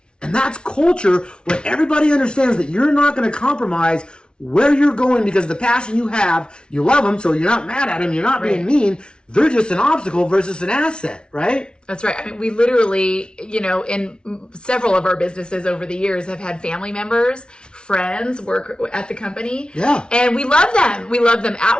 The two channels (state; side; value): late; right; 0.055 ms